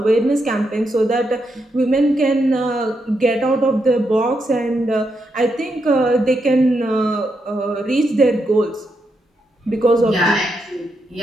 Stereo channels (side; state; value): both; normal; correlation 0.82